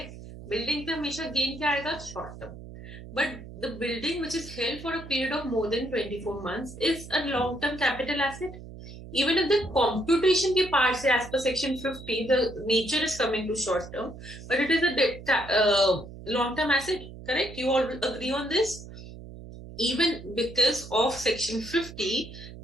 Building पे हमेशा गेन क्या आएगा, short term. But the building which is held for a period of more than 24 months is a long-term capital asset. Even if the computation के part से as per section 50, the nature is coming to short term, but it is a long-term asset, correct? You all agree on this? Even because of section 50,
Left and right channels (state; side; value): noise; right; hum, 14 dB below the sound